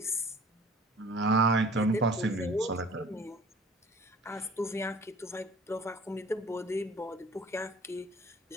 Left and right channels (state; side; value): normal; both; correlation 0.48